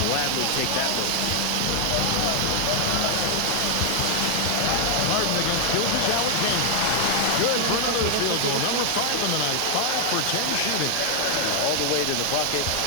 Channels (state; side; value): different; both; correlation 0.00